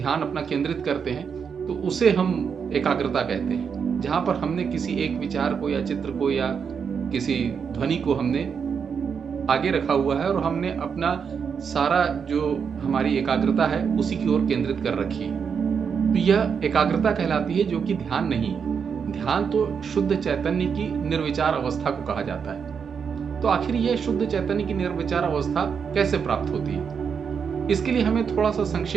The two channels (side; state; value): left; quieter; 6.6 dB